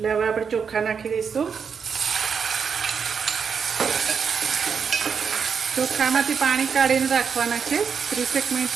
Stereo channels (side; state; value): left; quieter; 6.4 dB